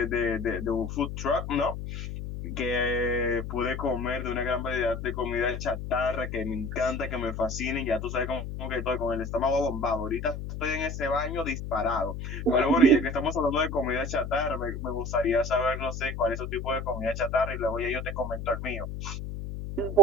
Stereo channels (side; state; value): left; noise; hum, 6 dB below the sound